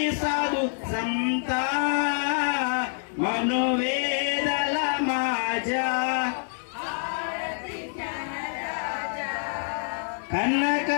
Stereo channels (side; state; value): right; silent; 60 dB below the other